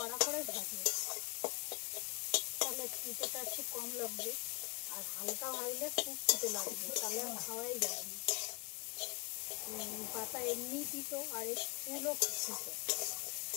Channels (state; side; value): quieter; right; 31.4 dB